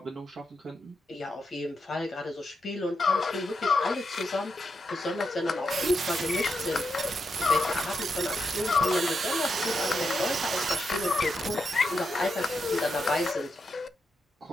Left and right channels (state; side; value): normal; both; correlation 0.84